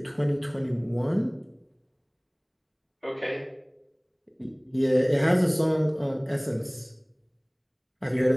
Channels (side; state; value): both; identical; correlation 1.00